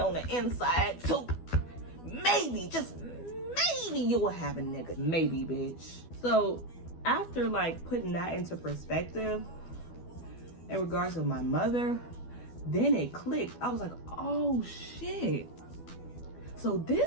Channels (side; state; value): right; late; 12 ms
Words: the inside, too. Maybe, just maybe you will have a nigga. Maybe, bitch. So, after, like, putting that into perspective, in regards to my mother, then it clicked. I was like, oh, shit. So,